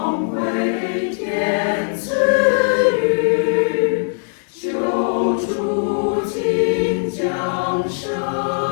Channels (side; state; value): right; silent; digital silence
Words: 辉天赐予，救主今降生。